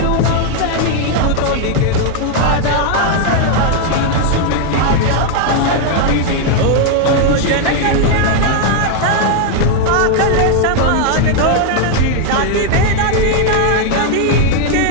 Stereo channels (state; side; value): different; both; correlation 0.00